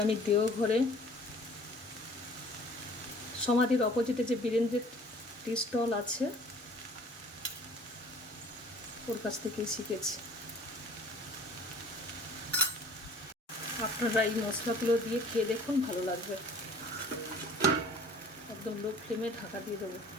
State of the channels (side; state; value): both; normal; correlation 0.50